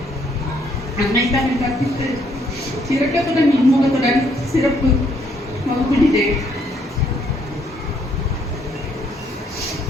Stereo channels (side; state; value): both; normal; correlation 0.69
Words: அன்னை தமிழ் கற்பித்து இரக்கத்துடன் இன்முகத்துடன் சிறப்பு வகுப்பிடித்தேன்.